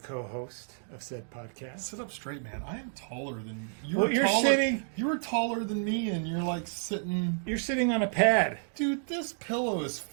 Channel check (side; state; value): left; silent; digital silence